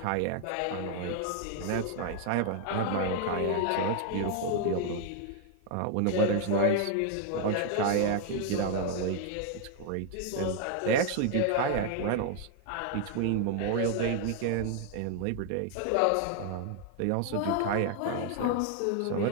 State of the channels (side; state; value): both; different; correlation 0.00